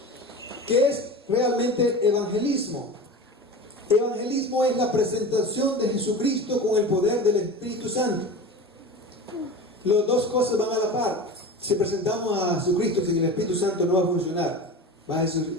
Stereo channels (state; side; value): normal; both; correlation 0.32